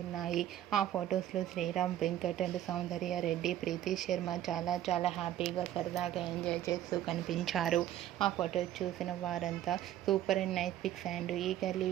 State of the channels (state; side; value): quieter; left; 12.2 dB